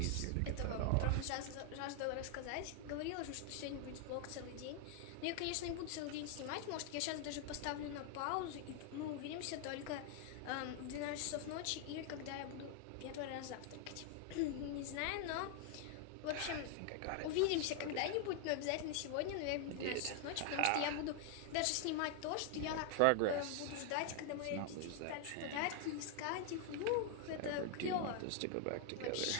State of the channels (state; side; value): different; both; correlation 0.00